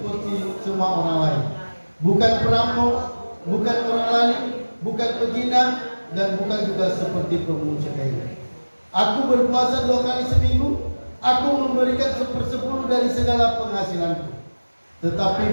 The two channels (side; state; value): both; inverted; correlation -1.00